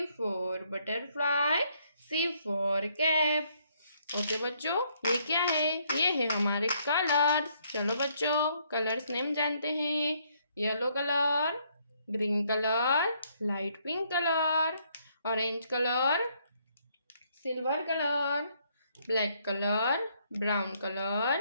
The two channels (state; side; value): inverted; both; correlation -0.70